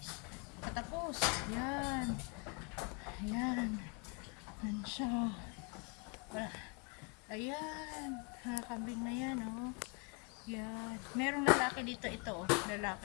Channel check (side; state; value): right; quieter; 33.6 dB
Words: Katapos. Ayan. Ayan. Ayan siya. Ayan. Kambing na yan, oh. Yan. Merong lalaki dito, ito, oh.